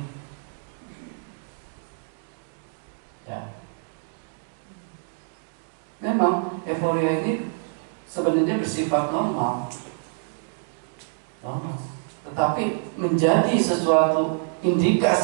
Ya. Memang euforia ini sebenarnya bersifat normal, tetapi menjadi sesuatu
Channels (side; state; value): left; silent; digital silence